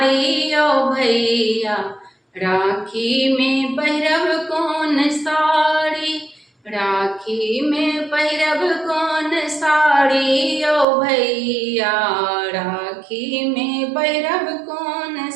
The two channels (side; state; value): left; drops out; at 10.9 s